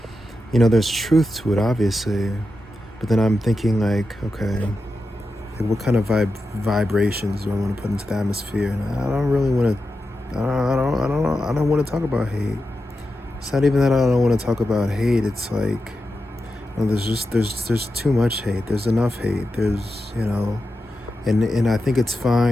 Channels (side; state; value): both; normal; correlation 0.90